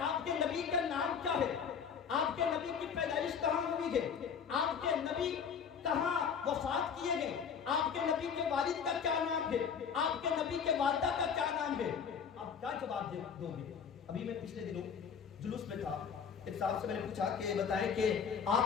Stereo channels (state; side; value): quieter; right; 6.9 dB